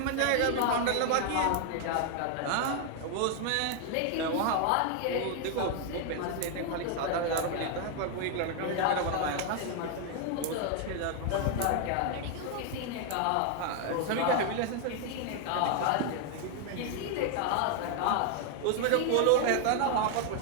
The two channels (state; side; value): different; both; correlation 0.00